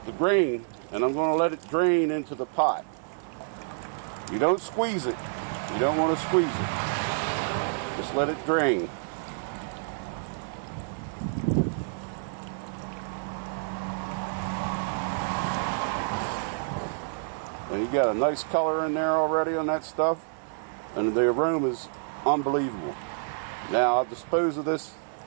grain, and I'm going to let it drain into the pot. You don't squeeze it. You don't want to squeeze it. Just let it drain. And you got a nice color in there already on that stuff, and the aroma is unbelievable. Now I'll dispose of this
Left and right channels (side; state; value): left; silent; digital silence